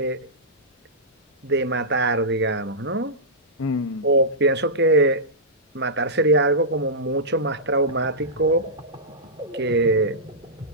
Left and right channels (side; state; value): both; normal; correlation -0.15